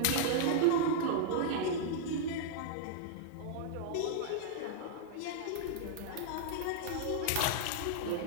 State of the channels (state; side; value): different; both; correlation -0.01